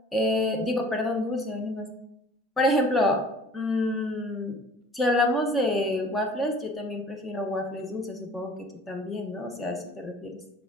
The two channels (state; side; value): normal; both; correlation 0.49